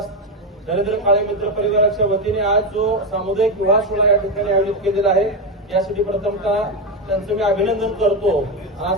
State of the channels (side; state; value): both; normal; correlation 0.10